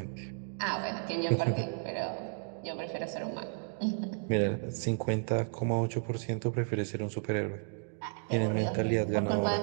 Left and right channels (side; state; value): left; silent; 56 dB below the other